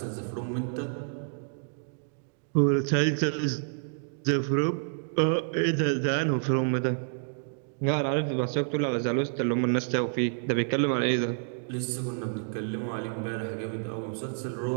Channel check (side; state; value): left; silent; digital silence